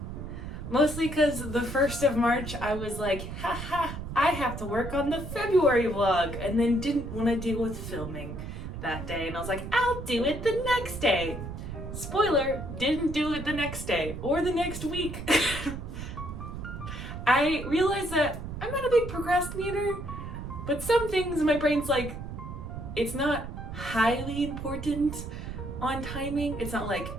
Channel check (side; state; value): right; noise; rumble, 8 dB below the sound